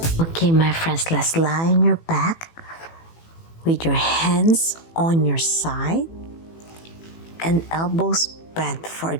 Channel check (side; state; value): right; late; 18 ms